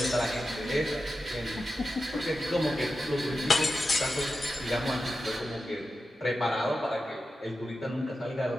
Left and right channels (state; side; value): normal; both; correlation 0.91